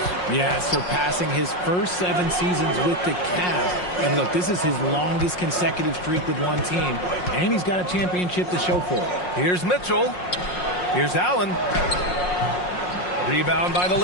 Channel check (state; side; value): late; right; 5.5 ms